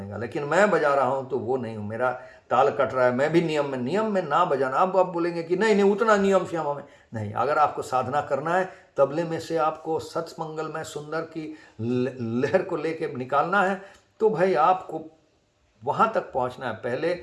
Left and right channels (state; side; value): identical; both; correlation 1.00